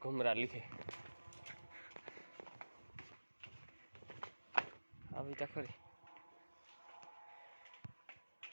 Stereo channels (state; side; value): inverted; both; correlation -1.00